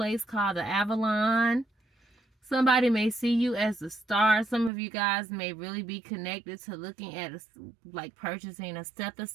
called the Avalon. Somebody may see you as a star. Some of you guys may really be connected to looking at like purchasing a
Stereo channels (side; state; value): left; drops out; at 4.7 s